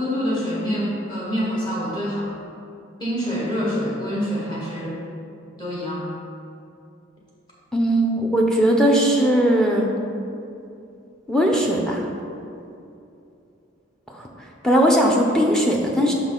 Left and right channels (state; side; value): normal; both; correlation 0.63